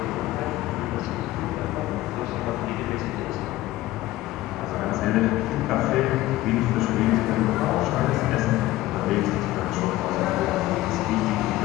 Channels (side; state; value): right; quieter; 16.6 dB